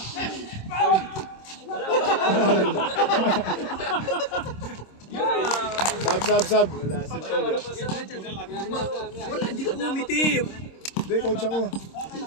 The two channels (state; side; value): late; right; 26 ms